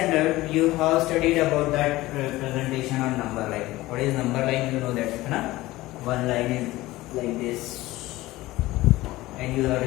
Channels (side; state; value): right; quieter; 18.1 dB